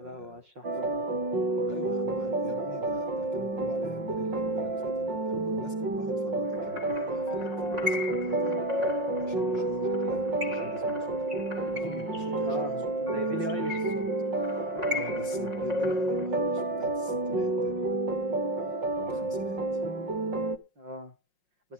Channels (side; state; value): left; late; 5.5 ms